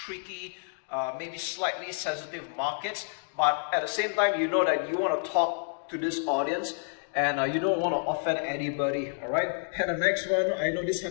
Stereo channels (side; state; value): right; silent; digital silence